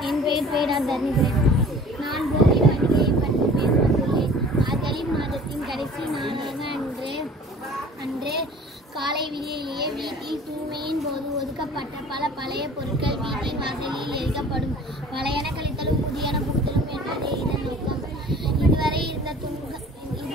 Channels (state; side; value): normal; both; correlation 0.47